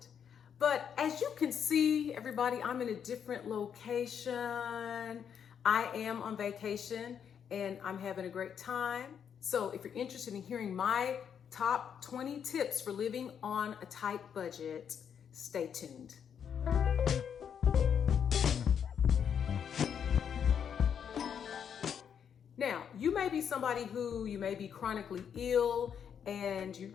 But as you can see, everybody, I'm in a different location. I am on vacation and I'm having a great time. So if you're interested in hearing my top 20 tips for living on a tight budget, stay tuned. Now, you may be somebody who you may be chronically ill and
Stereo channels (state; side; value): quieter; right; 7.9 dB